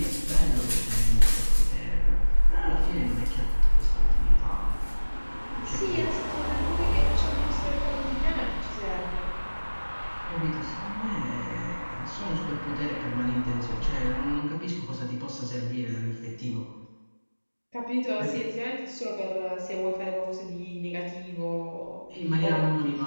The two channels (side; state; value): both; inverted; correlation -1.00